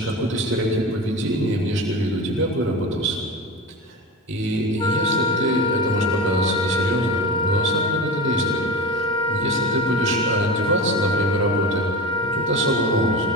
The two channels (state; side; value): normal; both; correlation 0.26